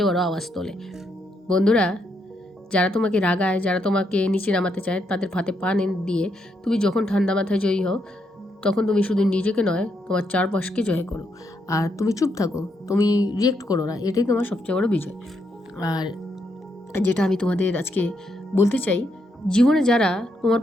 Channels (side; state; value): both; normal; correlation 0.78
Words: বড় আওয়াজ তোলে। বন্ধুরা, যারা তোমাকে রাগায়, যারা তোমাকে নিচে নামাতে চায়, তাদের ফাঁদে পা দিয়ে তুমি যখন ঠান্ডা মাথায় জয়ী হও, তখন তুমি শুধু নিজেকে নয় তোমার চারপাশকে জয় করো। আর তুমি চুপ থাকো, তুমি রিয়েক্ট করো না, এটাই তোমার সবচেয়ে বড় বিজয়। আর যেটা আমি তোমাদের আজকে বলতে চাই, জীবনে যারা তোমার